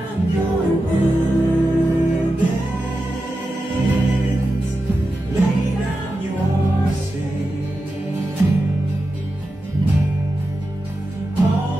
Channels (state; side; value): normal; both; correlation 0.91